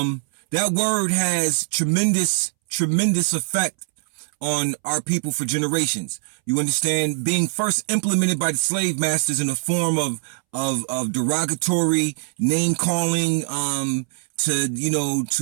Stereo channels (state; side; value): silent; left; 64 dB below the other